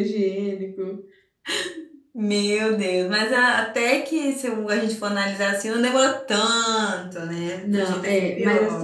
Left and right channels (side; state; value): both; identical; correlation 1.00